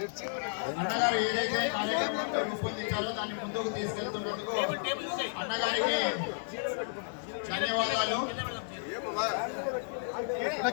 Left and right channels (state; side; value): silent; right; digital silence